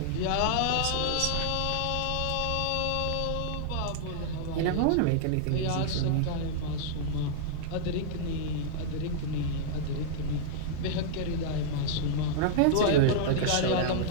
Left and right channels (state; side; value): different; both; correlation -0.01